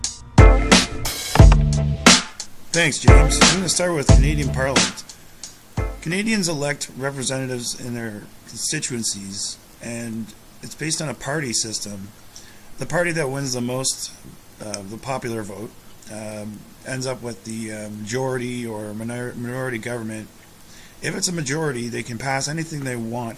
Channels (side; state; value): both; identical; correlation 1.00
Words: Thanks, James. I'm going to start with Canadian Parliament. Canadians elect representatives in their constituencies, and it's based on a party system. The party that wins the most, the popular vote, ends up with the majority or minority government. If it's a majority, they can pass anything they want